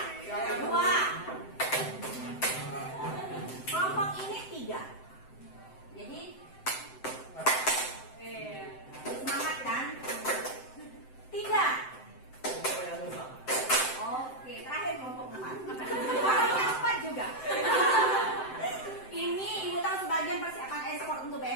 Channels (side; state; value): right; late; 7.8 ms